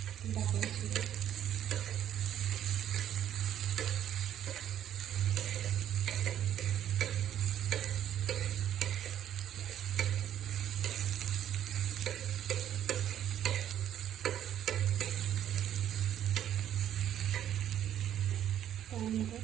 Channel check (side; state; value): left; quieter; 10.7 dB